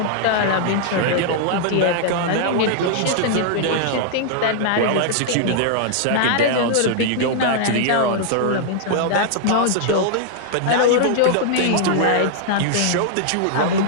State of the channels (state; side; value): different; both; correlation -0.01